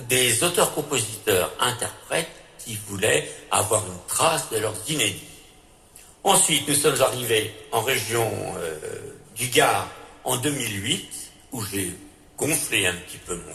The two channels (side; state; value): both; identical; correlation 1.00